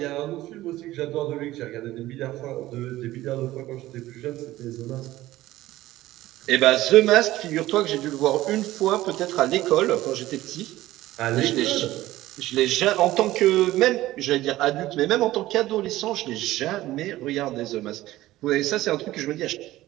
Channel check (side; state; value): left; quieter; 16.1 dB